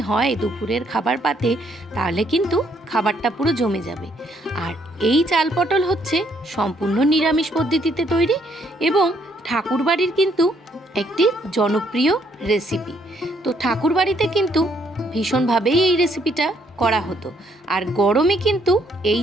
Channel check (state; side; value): normal; both; correlation 0.69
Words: হয় দুপুরের খাবার পাতে, তাহলে কিন্তু খাবারটা পুরো জমে যাবে। আর এই চাল পটল হচ্ছে সম্পূর্ণ নিরামিষ পদ্ধতিতে তৈরি এবং ঠাকুরবাড়ির কিন্তু একটি জনপ্রিয় রেসিপি। তো ঠাকুরবাড়িতে কিন্তু ভীষণভাবেই এই রেসিপিটা করা হতো। আর গরমে কিন্তু